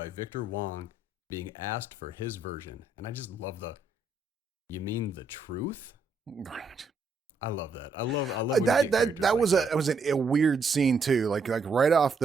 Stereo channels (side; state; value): left; quieter; 3.6 dB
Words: Victor Wong, being asked for his version. And I just love you mean the truth? I love that. I love when that was a weird scene too. Like right off